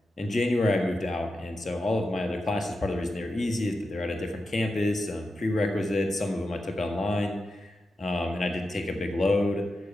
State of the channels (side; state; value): both; normal; correlation 0.90